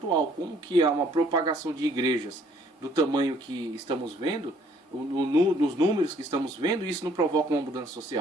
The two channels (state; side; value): normal; both; correlation 0.62